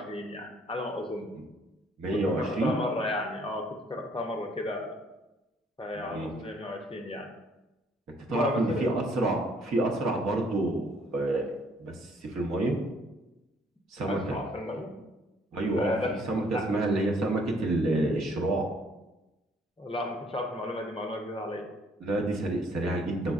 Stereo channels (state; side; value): normal; both; correlation 0.63